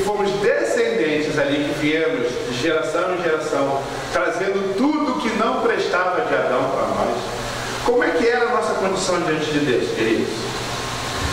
descendentes ali, que viemos de geração em geração, trazendo tudo que não prestava de Adão para nós. Como é que era a nossa condição diante de Deus, queridos?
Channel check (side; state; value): both; identical; correlation 1.00